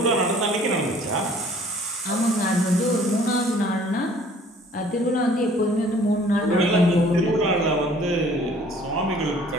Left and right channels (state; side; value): normal; both; correlation 0.54